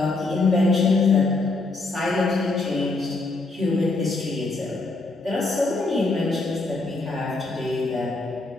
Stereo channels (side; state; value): right; quieter; 3.3 dB